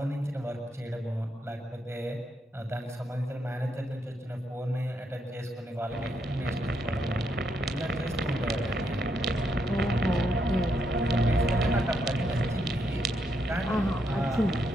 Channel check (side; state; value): both; normal; correlation 0.78